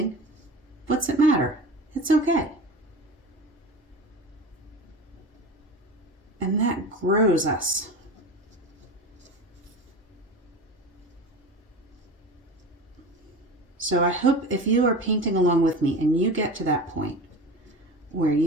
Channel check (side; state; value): both; normal; correlation 0.32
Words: What's it matter? It's okay. And that grows us. So I hope if you are painting along with me and you get to that point where